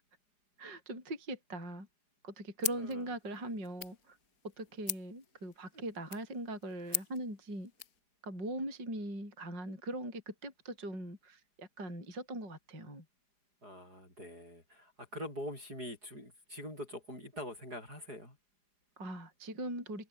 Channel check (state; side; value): late; left; 4.9 ms